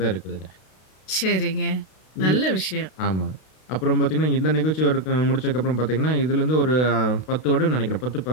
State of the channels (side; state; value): right; late; 32 ms